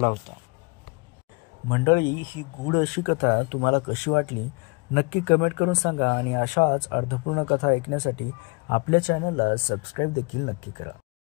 होता. मंडळी, ही गूढ अशी कथा तुम्हाला कशी वाटली नक्की कमेंट करून सांगा आणि अशाच अर्थपूर्ण कथा ऐकण्यासाठी आपल्या चॅनलला सबस्क्राईब देखील नक्की करा.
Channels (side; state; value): right; quieter; 30.1 dB